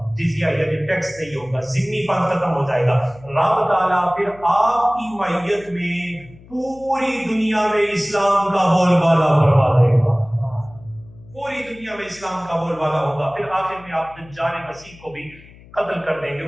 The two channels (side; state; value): left; noise; hum, 22 dB below the sound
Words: جزیہ یعنی ٹیکس نہیں ہوگا، ذمہ پن ختم ہو جائے گا. رب تعالیٰ پھر آپ کی معیت میں پوری دنیا میں اسلام کا بول بالا فرما دے گا. پوری دنیا میں اسلام کا بول بالا ہوگا. پھر آخر میں آپ دجال مسیح کو بھی قتل کر دیں گے،